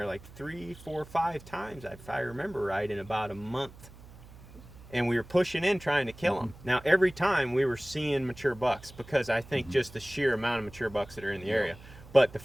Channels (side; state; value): right; noise; hum, 19 dB below the sound